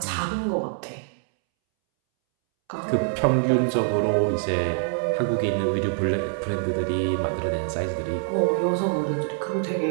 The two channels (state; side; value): silent; left; 62 dB below the other